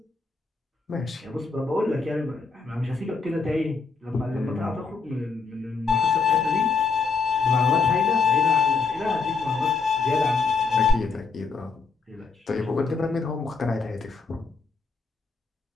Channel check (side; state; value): right; quieter; 4.8 dB